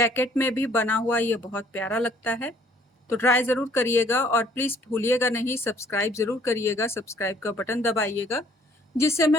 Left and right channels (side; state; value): both; normal; correlation 0.60